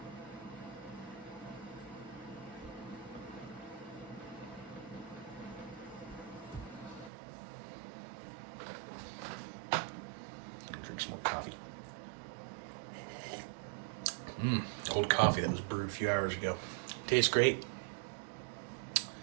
Drink some more coffee. Cold coffee that was brewed a few hours ago. Tastes great.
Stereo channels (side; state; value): left; drops out; at 7.1 s